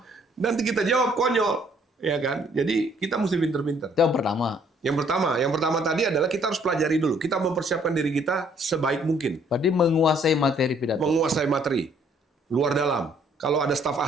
Nanti kita jawab konyol. Ya kan? Jadi kita mesti pinter-pinter. Itu yang pertama. Yang pertama tadi adalah kita harus pelajari dulu. Kita mempersiapkan diri kita sebaik mungkin. Berarti menguasai materi pidato. Menguasai materi. Luar dalam. Kalau ada staf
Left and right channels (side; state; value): both; normal; correlation 0.63